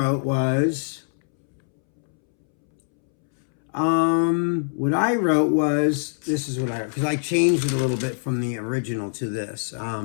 was, this is what I wrote, because I changed it a little bit from the original to this.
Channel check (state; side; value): silent; right; 63 dB below the other